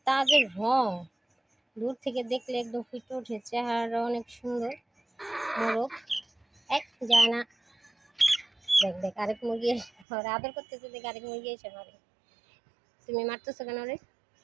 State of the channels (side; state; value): left; drops out; at 10.1 s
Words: তাজের রং, দূর থেকে দেখলে একদম ফুটে ওঠে। চেহারা অনেক সুন্দর, মোরগ এক যায় না। দেখ দেখ আরেক মুরগি ওরা আদর করতেছে, দেখ আরেক মুরগি এসে মারে। তুমি মারতেছো কেন রে?